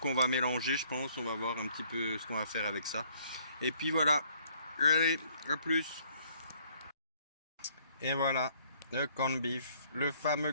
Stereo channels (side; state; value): both; inverted; correlation -0.63